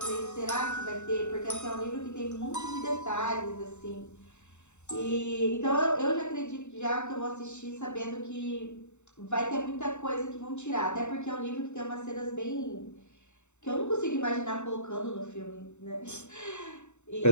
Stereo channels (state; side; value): late; right; 0.83 ms